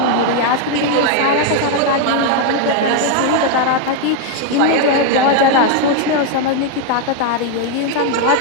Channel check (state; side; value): different; both; correlation 0.00